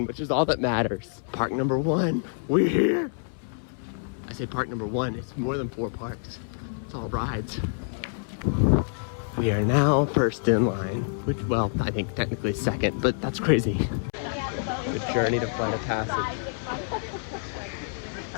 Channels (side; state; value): right; silent; 60 dB below the other